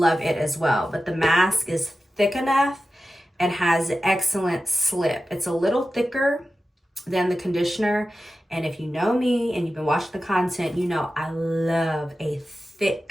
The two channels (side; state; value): both; normal; correlation 0.93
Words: it as well. But the mask is thick enough and has excellent slip. It's a little thicker than the conditioner. And if you know me and you've been watching the content, you know I love a